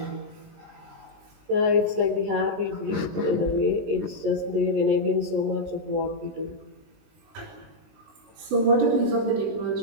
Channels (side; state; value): left; late; 20 ms